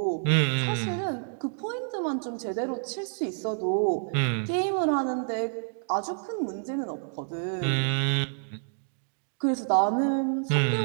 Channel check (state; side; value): silent; left; digital silence